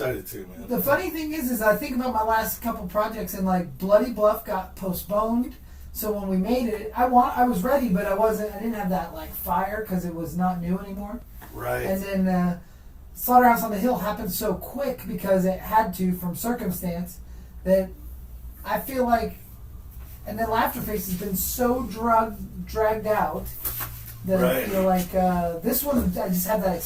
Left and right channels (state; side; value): identical; both; correlation 1.00